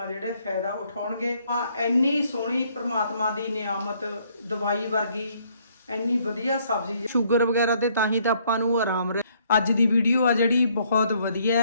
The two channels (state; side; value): inverted; both; correlation -0.67